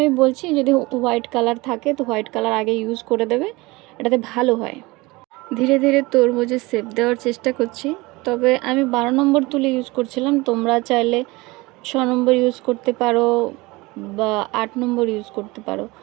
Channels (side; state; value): left; quieter; 22.7 dB